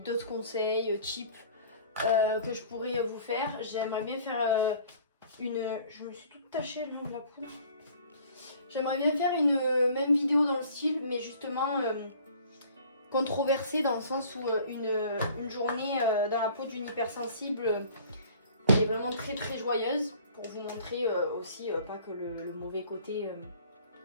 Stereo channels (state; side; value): inverted; both; correlation -0.51